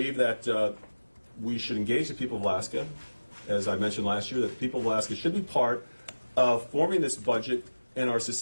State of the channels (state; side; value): inverted; both; correlation -1.00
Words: that we should engage the people of Alaska. As I mentioned last year, that the people of Alaska should be part of forming this budget and our